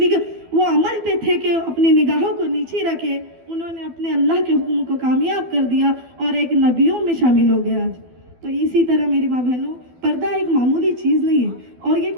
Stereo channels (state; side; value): late; left; 12 ms